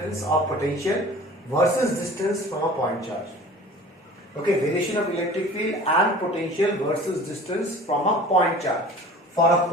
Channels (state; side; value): normal; both; correlation 0.43